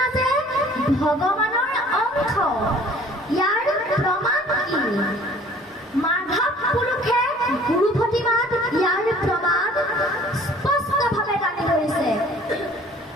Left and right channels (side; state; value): both; normal; correlation 0.52